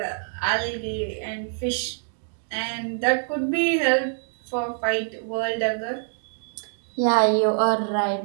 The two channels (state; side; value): silent; left; digital silence